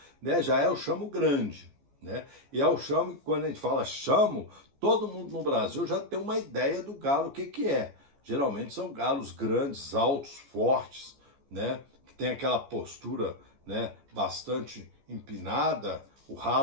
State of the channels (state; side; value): late; left; 14 ms